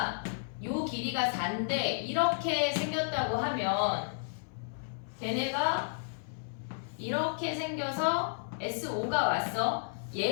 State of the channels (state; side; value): silent; right; 56 dB below the other